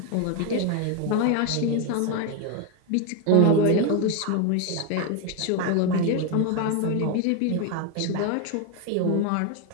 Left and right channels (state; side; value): different; both; correlation 0.02